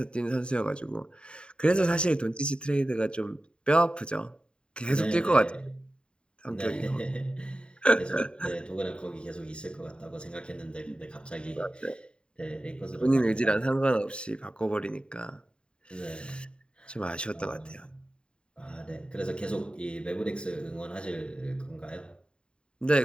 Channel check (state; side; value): late; right; 0.052 ms